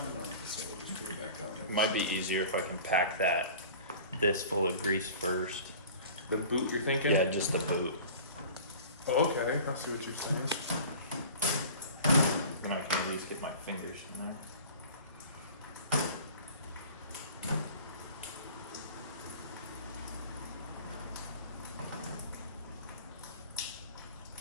on it, so we'll just put it back on. It might be easier if I can pack this full of grease first. The boot, you're thinking? Yeah, just the boot. Oh, okay. I see what you're saying. Then I can at least get my fingers in there.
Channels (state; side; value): inverted; both; correlation -0.42